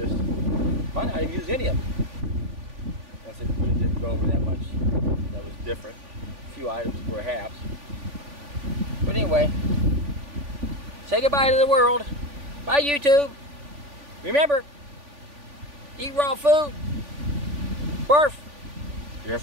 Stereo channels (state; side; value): late; left; 3.5 ms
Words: Might not even use any of it. That's it, but it didn't go over that much. That was different. A few items perhaps. But anyway, say goodbye to the world. Bye, YouTube. Remember, eat raw food. Barf. You're in